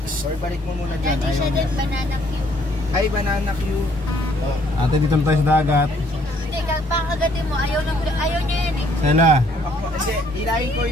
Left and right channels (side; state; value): both; normal; correlation 0.64